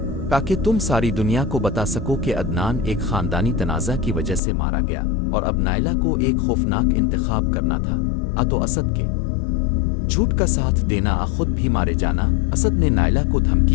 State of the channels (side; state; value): right; drops out; at 4.4 s